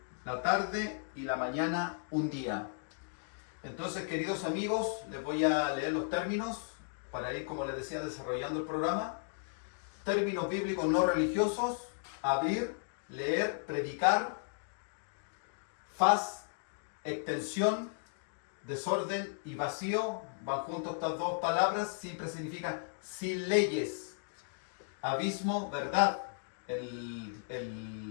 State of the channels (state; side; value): silent; right; digital silence